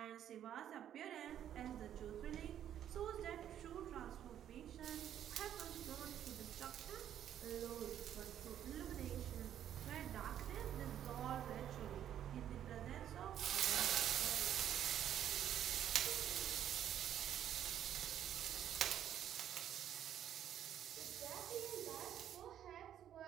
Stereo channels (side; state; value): left; quieter; 10.4 dB